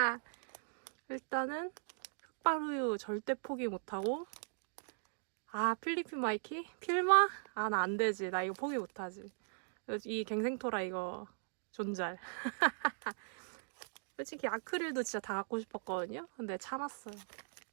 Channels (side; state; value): left; silent; digital silence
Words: 일단은 흑발우유 절대 포기 못하고 필리핀 마이키? 필마? 나 안 되지. 나 이거 포기 못하지. 이 갱생토라 이거 존잘. 솔직히 아크릴도 진짜 다 갖고 싶었거든요. 근데 참았어요.